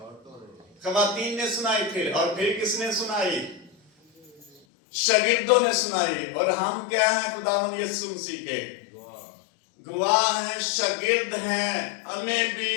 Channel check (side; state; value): right; drops out; at 4.6 s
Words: خواتین نے سنائی. پھر کس نے سنائی؟ شاگردوں نے سنائی. اور ہم کیا ہیں خداوند یسوع مسیح کے گواہ ہیں, شاگرد ہیں. ہمیں بھی